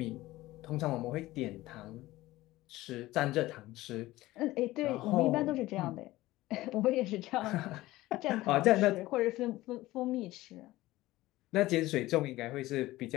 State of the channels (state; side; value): quieter; right; 17.5 dB